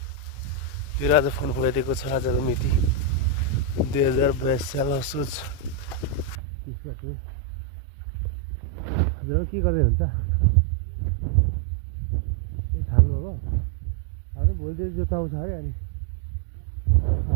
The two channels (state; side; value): drops out; left; at 6.4 s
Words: फेरि आज फोन फुलाइदिएको छ। आजको मिति 2022 साल असोज 30 गते। हजुर के गर्दै हुन्छ? ए थाल्नुभएको? हाम्रो भोलितिर जोत्नु आउँछ अरे। अनि